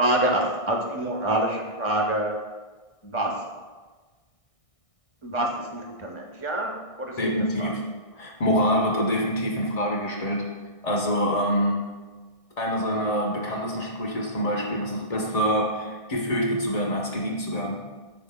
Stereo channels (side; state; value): right; late; 1.6 ms